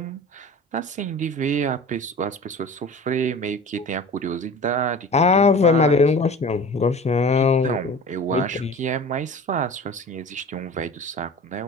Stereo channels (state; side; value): normal; both; correlation 0.39